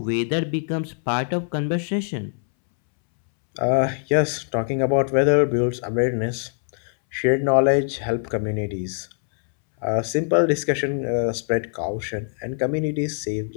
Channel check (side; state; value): right; silent; 63 dB below the other